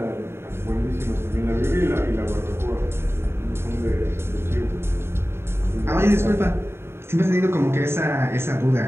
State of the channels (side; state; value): left; late; 0.12 ms